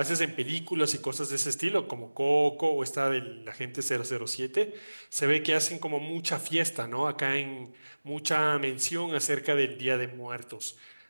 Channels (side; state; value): both; inverted; correlation -1.00